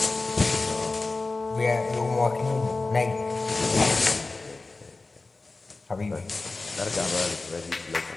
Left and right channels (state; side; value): quieter; right; 3.5 dB